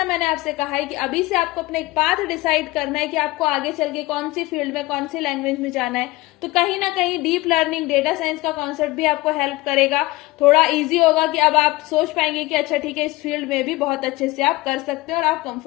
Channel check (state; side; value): quieter; right; 20.0 dB